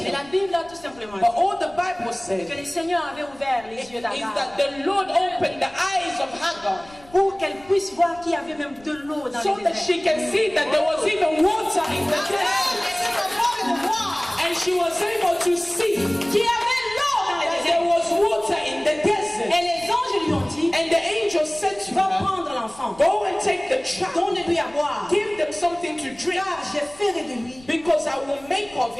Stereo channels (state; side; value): noise; left; rumble, 24 dB below the sound